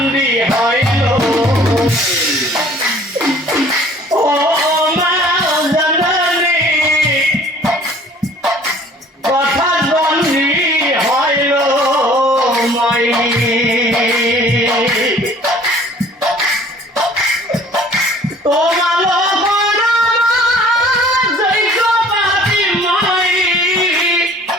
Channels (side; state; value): both; normal; correlation 0.52